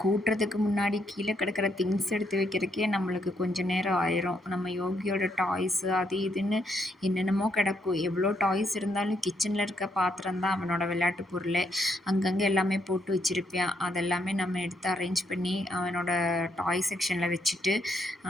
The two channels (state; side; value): normal; both; correlation 0.75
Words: கூட்டுறதுக்கு முன்னாடி கீழே கிடக்கிற திங்ஸ் எடுத்து வைக்கிறதுக்கே நம்மளுக்கு கொஞ்சம் நேரம் ஆயிரும். நம்ம யோகியோட டாய்ஸு அது இதுன்னு என்னென்னமோ கிடக்கும். எவ்வளோ டாய்ஸ் இருந்தாலும் கிச்சனில் இருக்க பாத்திரம் தான் அவனோட விளையாட்டு பொருளே. அங்கங்கே எல்லாமே போட்டு வச்சுருப்பான். அதெல்லாமே நம்ம எடுத்து அரேஞ்ச் பண்ணி அவனோட டாய் செக்ஷனில் வச்சுட்டு